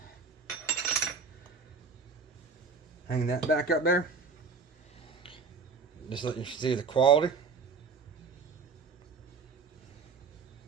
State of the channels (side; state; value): left; quieter; 4.9 dB